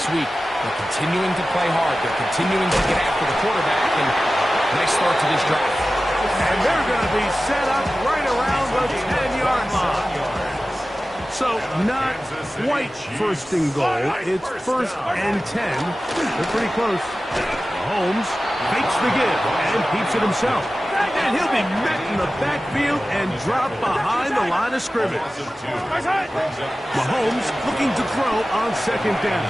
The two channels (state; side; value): normal; both; correlation 0.95